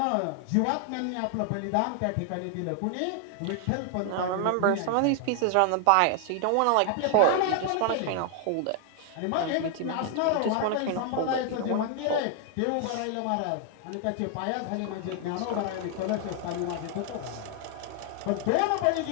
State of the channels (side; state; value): both; different; correlation 0.00